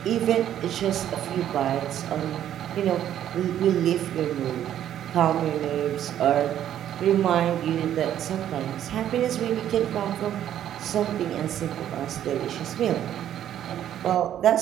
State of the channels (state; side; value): quieter; left; 11.0 dB